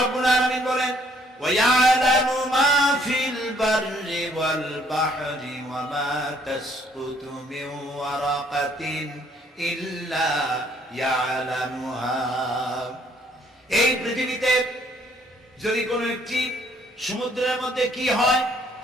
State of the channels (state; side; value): normal; both; correlation 0.64